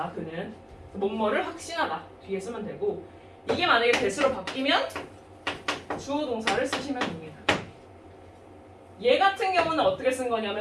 그는 뭐뭐를 확신하다. 뒤에 쓰면 되고 이게 만약에 대수로 바뀌면 주어 동사를 쓰시면 됩니다. 얘 같은 경우는 어떻게 쓴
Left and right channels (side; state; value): both; identical; correlation 1.00